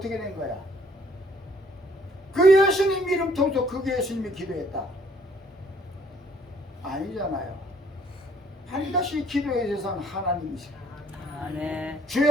된 거야? 그 예수님 이름 통해서 그 예수님이 기도했다. 아니잖아요. 반드시 기도에 대해서는 하나님이세요. 아멘.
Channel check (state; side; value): normal; both; correlation 0.62